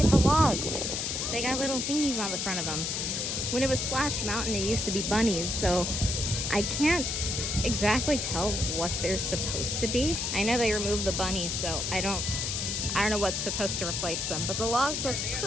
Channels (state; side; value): noise; left; hiss, 1 dB below the sound